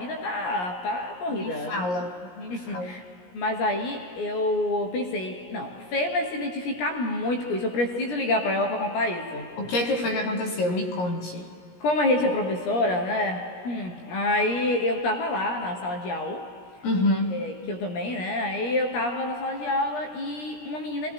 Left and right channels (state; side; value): late; right; 17 ms